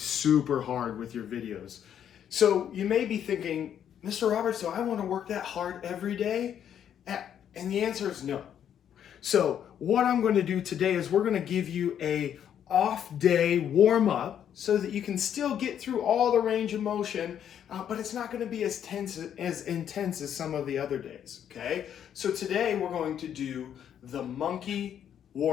hard with your videos. So you may be thinking, Mr. Roberts, do I want to work that hard every day? And the answer is no. So what I'm going to do today is we're going to give you a off day warm up so that you can still get through all the range of motion, but it's not going to be as intense as some of the other days, okay? So today we're going to do the monkey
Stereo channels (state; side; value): quieter; right; 9.4 dB